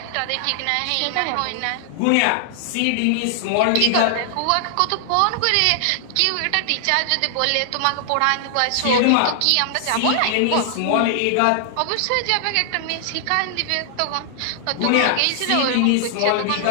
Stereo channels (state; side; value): different; both; correlation 0.00